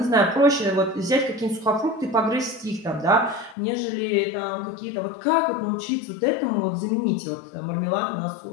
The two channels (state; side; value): drops out; right; at 3.6 s